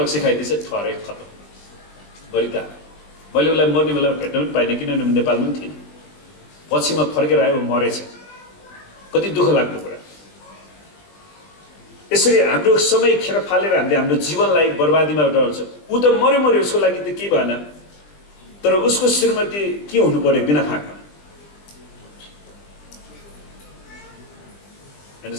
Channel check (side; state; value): right; late; 20 ms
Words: खाइदिएछ, ठहरै खतम गरिता। मैले उसलाई मर्ने बेला भेट्न पनि पाइनँ, किनभने नेपालमा पनि थिएन। पछि म फर्केर आयो, मरेछ। कति दुःख लाग्दो कुरा। यसरी हाम्रो समय खेर फालेर हामीले हाम्रो जीवनलाई बर्बादीमा डराउँछ। ऊ त मर्यो, उसको लागि त केही भएन, तर उसको श्रीमती के हुनु पर्यो बिना फाकमा?